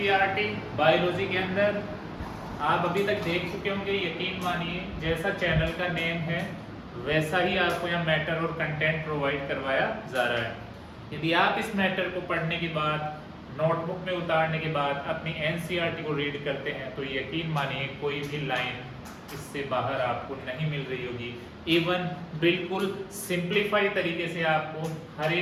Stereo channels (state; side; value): identical; both; correlation 1.00